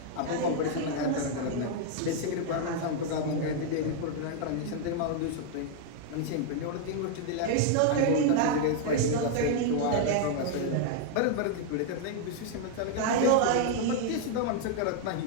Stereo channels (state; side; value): different; both; correlation 0.00